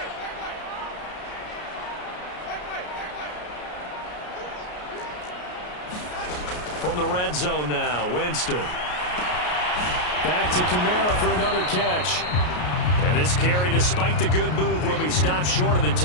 From the red zone now, Winston. Back to Kamara for another catch. And this carry, despite the good move, will be stopped short of the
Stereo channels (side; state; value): right; late; 33 ms